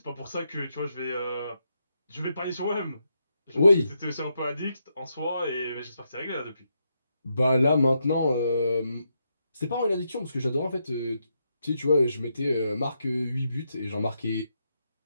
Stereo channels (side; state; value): both; inverted; correlation -0.81